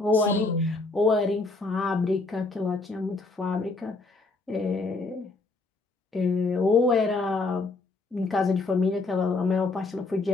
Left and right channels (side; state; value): right; quieter; 3.5 dB